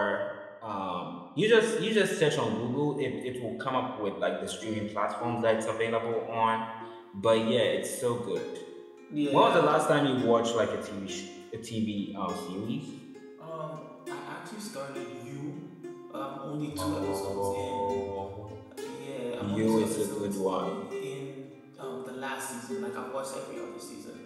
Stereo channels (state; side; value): identical; both; correlation 1.00